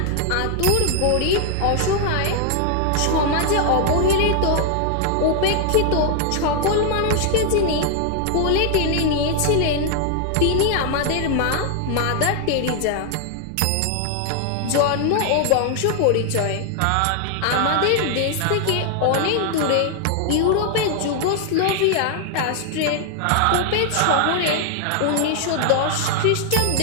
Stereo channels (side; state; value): both; different; correlation 0.00